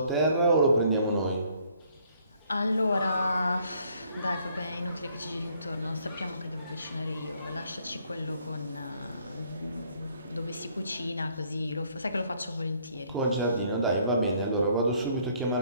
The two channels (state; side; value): inverted; both; correlation -0.65